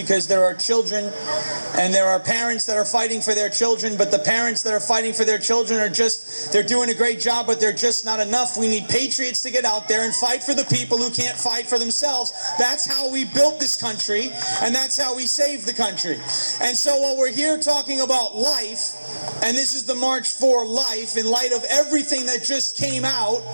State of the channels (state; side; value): inverted; both; correlation -1.00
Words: there are children and there are parents that are fighting for their children, but the parents that are fighting for their children are just, they're doing a great job, but they're just not enough. We need patriots to get out there and fight for the people who can't fight for themselves. That's how we built this country, and that's how we saved the country. And so while we're here talking about life, and this is the March for Life, in light of everything that just came out